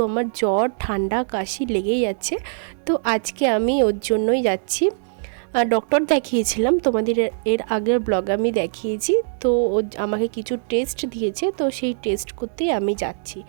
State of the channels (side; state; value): left; silent; digital silence